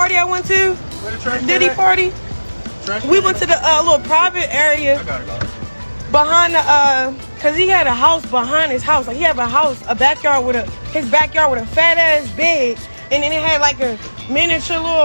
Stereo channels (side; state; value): both; inverted; correlation -1.00